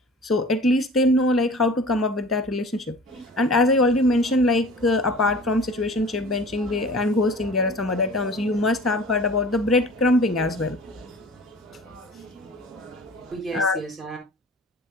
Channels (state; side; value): normal; both; correlation 0.43